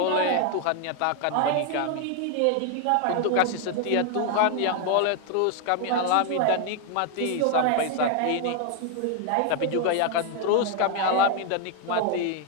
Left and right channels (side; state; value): both; different; correlation 0.01